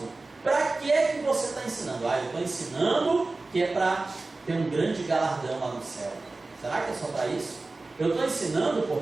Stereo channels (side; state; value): left; quieter; 3.3 dB